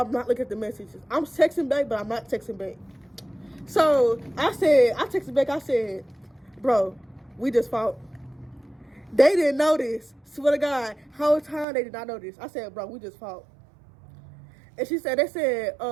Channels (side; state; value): left; drops out; at 11.7 s